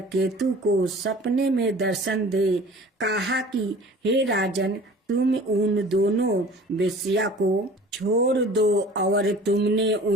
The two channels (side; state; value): both; normal; correlation 0.45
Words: को सपने में दर्शन दे कहा कि हे राजन, तुम उन दोनों वेश्या को छोड़ दो और तुमने